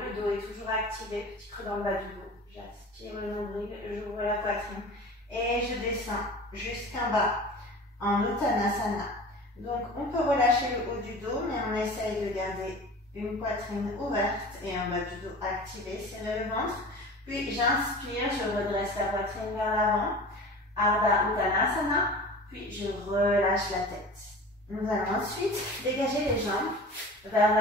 dos est toujours activé, petit creux dans le bas du dos. J'aspire le nombril, j'ouvre la poitrine et je descends jusqu'en bas en Uttanasana. Donc, on peut relâcher le haut du dos, mais on essaye de garder une poitrine ouverte et un bas du dos activé, serrer le ventre. Puis, j'inspire, je redresse la poitrine vers l'avant, Ardha Uttanasana, puis je relâche la tête. Nous allons ensuite dégager les jambes vers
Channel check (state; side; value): normal; both; correlation 0.37